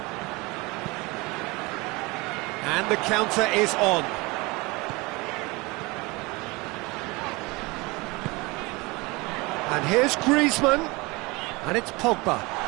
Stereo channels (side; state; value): left; quieter; 24.5 dB